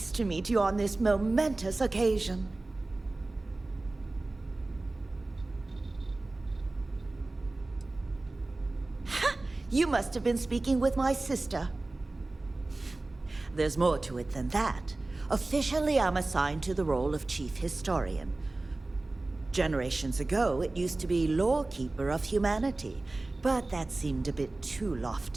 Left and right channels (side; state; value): left; quieter; 3.0 dB